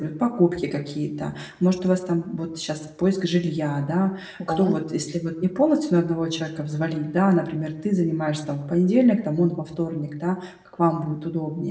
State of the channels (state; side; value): identical; both; correlation 1.00